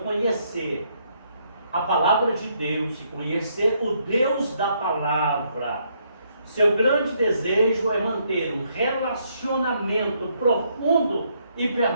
a palavra de Deus e conhecer o Deus da palavra, seu grande desejo é manter um relacionamento profundo e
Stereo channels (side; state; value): both; inverted; correlation -0.72